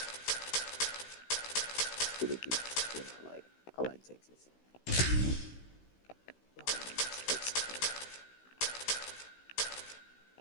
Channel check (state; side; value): late; right; 16 ms